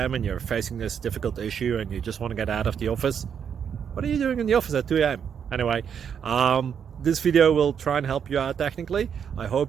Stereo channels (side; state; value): left; quieter; 7.7 dB